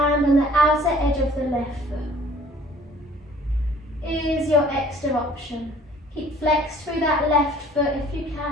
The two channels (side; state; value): both; normal; correlation 0.53